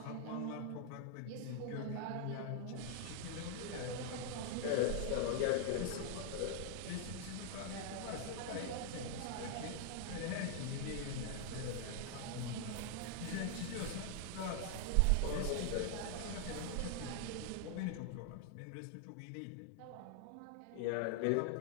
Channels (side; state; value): both; different; correlation 0.00